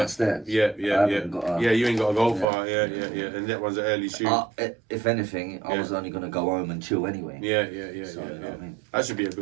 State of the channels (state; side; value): drops out; left; at 2.5 s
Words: Yeah. I haven't got a- Yeah, you ain't got to go Yeah. far. Yeah. And that one's an early shoot. If anything, I Yeah. was only gonna go home and chill anyway. Yeah. So, you know what I mean? That should be a